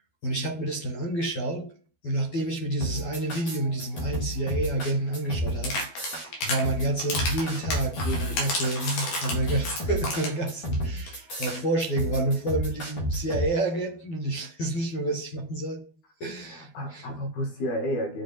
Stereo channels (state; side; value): late; right; 12 ms